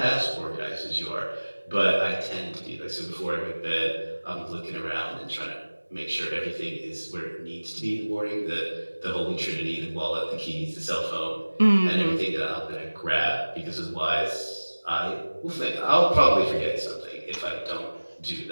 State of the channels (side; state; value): both; inverted; correlation -1.00